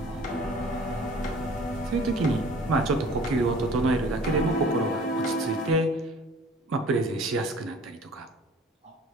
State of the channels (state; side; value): normal; both; correlation 0.49